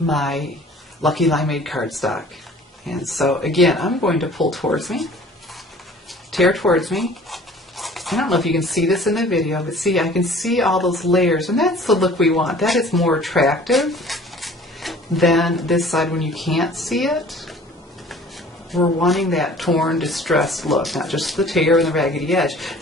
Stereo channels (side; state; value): both; normal; correlation 0.49